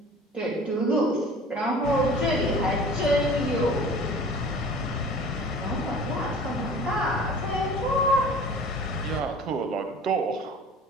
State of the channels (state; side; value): normal; both; correlation 0.43